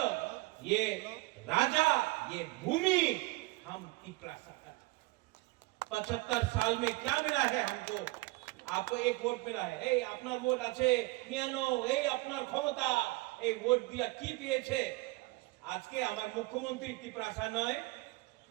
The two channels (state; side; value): quieter; left; 22.6 dB